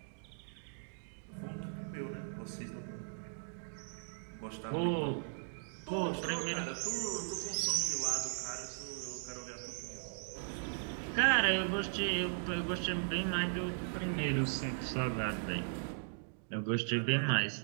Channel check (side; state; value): left; silent; digital silence